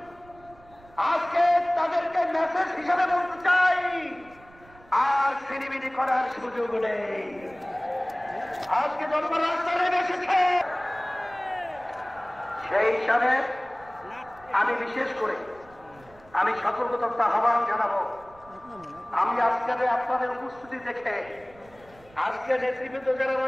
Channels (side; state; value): right; noise; rumble, 25 dB below the sound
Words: আজকে তাদেরকে মেসেজ হিসাবে বলতে চাই, আর ছিনিমিনি করার সুযোগ নেই। আজকে জনগণ রাস্তায় নেমে এসেছে, সেই হিসাবে আমি বিশেষ করে আমি সতর্কতা আহ্বান জানাবো। আমি আজকে আপনাদের উপস্থিতি দেখে আজকে নেতৃবৃন্দ যারা